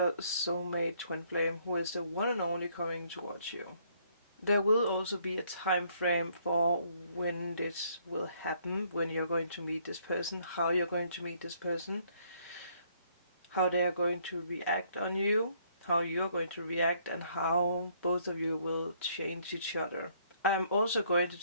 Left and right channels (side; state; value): both; inverted; correlation -0.66